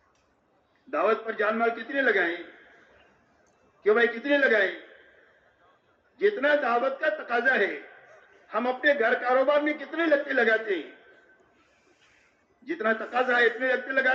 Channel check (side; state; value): both; identical; correlation 1.00